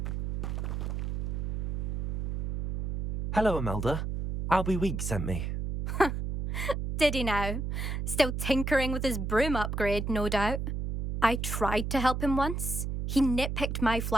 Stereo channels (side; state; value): right; noise; hum, 2 dB below the sound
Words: Hello, Imelda. Albie Weeks sent me. Did he now? Still tinkering with his broom upgrade, no doubt. I tried to help him once. He nitpicked my